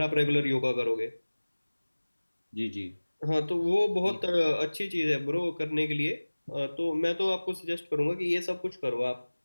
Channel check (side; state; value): both; inverted; correlation -1.00